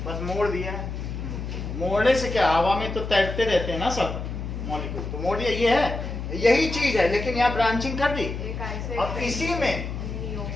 बस मोड़ दिया है। मोड़ने से क्या, हवा में तो तैरते रहते हैं ना सब मॉलिक्यूल, तो मोड़ दिया। ये है, यही चीज है, लेकिन यहाँ ब्रांचिंग कर दी। और इसी में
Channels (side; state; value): left; noise; hum, 6 dB below the sound